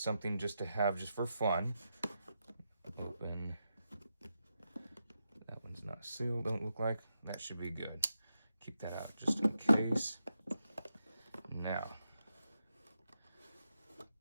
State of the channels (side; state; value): both; inverted; correlation -0.86